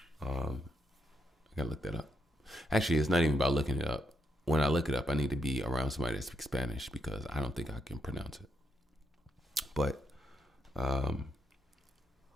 I gotta look that up. Actually, it's not even about looking it up. When I look it up, I need to be around somebody that speaks Spanish because I don't think I can pronounce it. But, um,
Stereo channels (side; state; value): both; normal; correlation 0.79